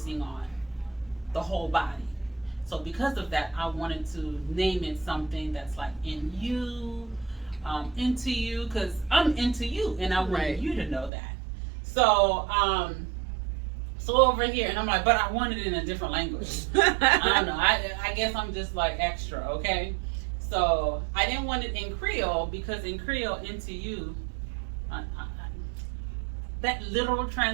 on the whole body. So because of that, I wanted to name it something that's like in you, into you, because I'm into you, and I want Right. you to know that. So over here, and I'm like, but I want it in a different language. I don't know. I guess I'm just like extra, okay? So I didn't want it in Creole because in Creole, into you, that literal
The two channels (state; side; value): drops out; left; at 11.1 s